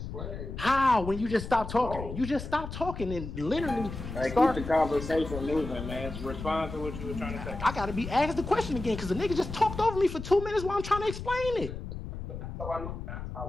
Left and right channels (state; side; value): noise; left; rumble, 8 dB below the sound